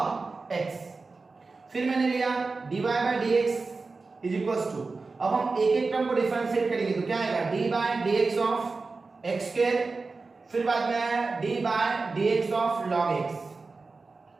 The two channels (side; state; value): left; quieter; 4.0 dB